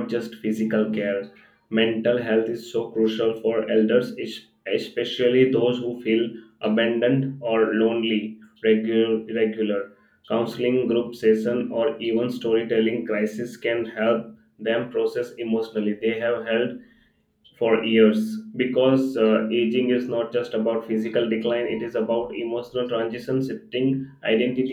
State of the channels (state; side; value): identical; both; correlation 1.00